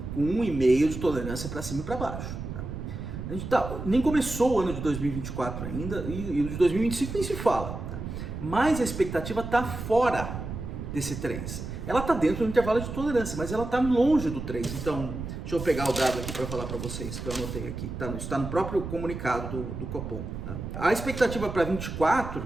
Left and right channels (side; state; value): right; noise; rumble, 7 dB below the sound